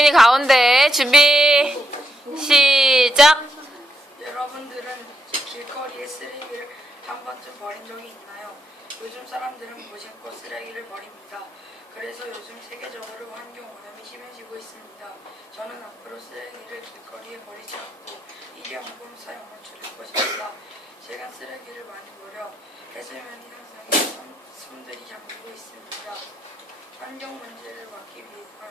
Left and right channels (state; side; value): normal; both; correlation 0.79